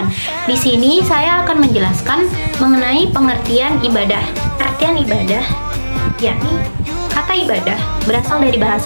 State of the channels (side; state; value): both; inverted; correlation -1.00